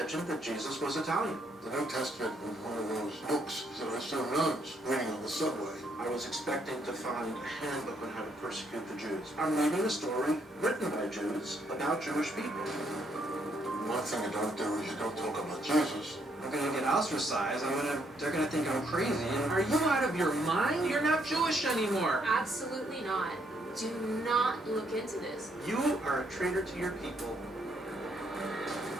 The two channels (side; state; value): both; normal; correlation 0.72